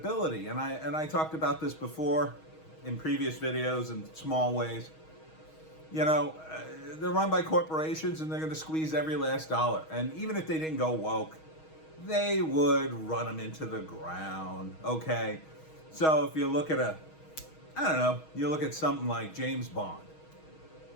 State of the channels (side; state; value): right; late; 6.3 ms